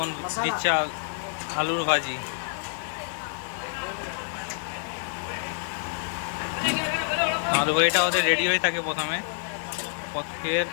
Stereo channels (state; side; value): silent; right; digital silence